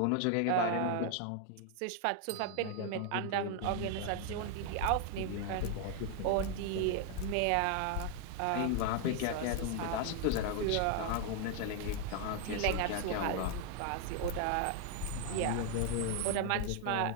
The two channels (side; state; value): both; different; correlation 0.00